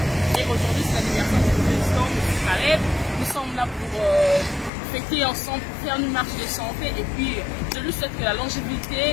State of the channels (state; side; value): drops out; right; at 4.7 s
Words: Et aujourd'hui, c'est l'anniversaire du président M. Caleb. Nous sommes là pour fêter ensemble, pour faire une marche de santé. Et puis, je lui souhaite que la